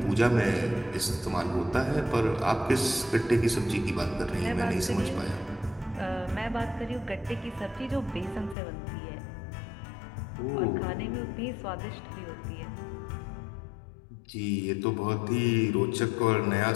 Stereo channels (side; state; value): right; drops out; at 8.6 s